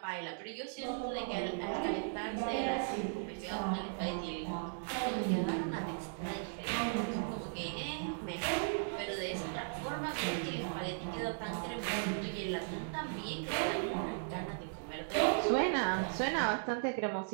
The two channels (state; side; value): silent; left; digital silence